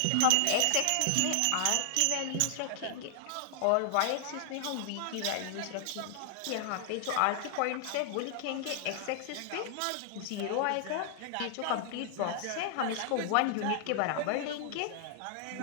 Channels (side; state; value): both; different; correlation 0.00